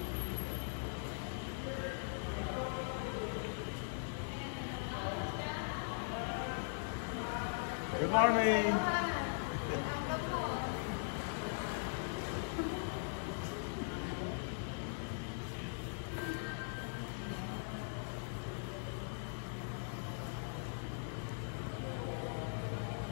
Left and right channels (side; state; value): right; silent; digital silence